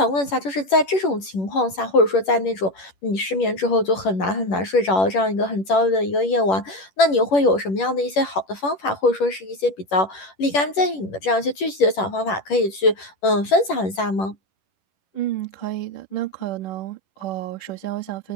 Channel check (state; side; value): late; right; 11 ms